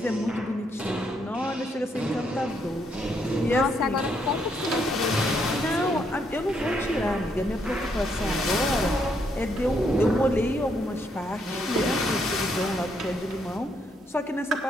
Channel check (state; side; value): normal; both; correlation 0.74